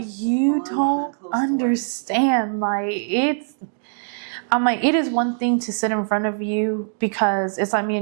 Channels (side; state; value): left; silent; digital silence